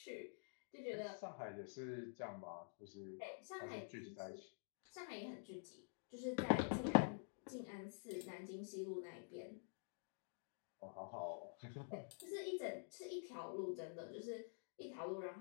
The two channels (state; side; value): silent; right; digital silence